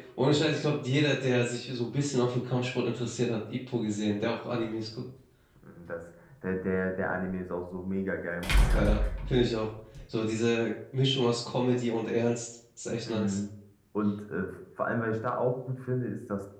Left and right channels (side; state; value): both; identical; correlation 1.00